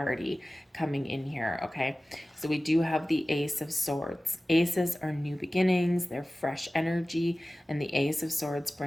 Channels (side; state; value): both; normal; correlation 0.96